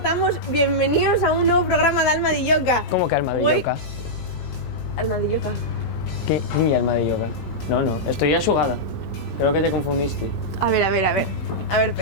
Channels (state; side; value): late; right; 18 ms